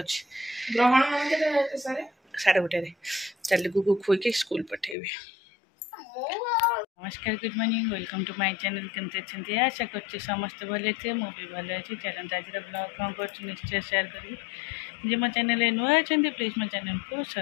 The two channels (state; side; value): drops out; right; at 5.0 s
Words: ग्रहण साढ़े गोटे चल गुगु खुईक स्कूल पठेबी। नमस्कार good morning welcome to my channel केमती अच्छे आशा कर समस्त भले थे मुझे भल अच्छी चलते आज ब्लॉग कौन कर निश्चय शेयर करी जे मो चैनल नुआ अच्छा प्लीज मो चैनल को